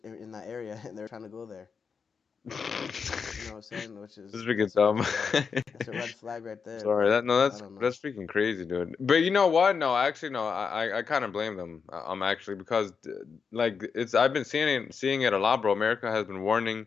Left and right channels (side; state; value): right; quieter; 5.8 dB